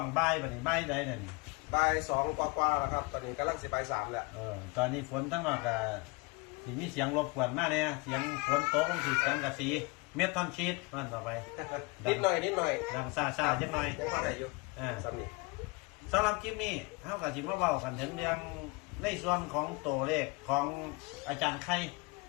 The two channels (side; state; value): right; quieter; 26.4 dB